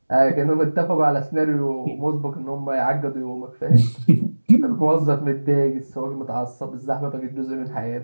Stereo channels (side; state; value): both; inverted; correlation -1.00